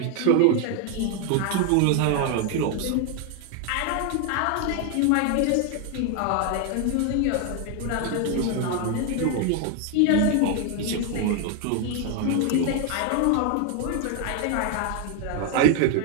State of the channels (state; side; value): different; both; correlation 0.01